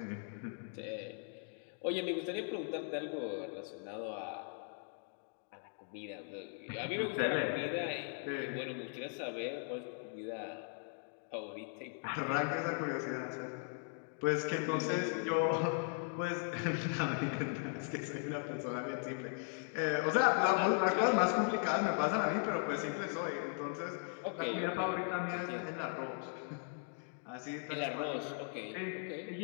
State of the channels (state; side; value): silent; right; 52 dB below the other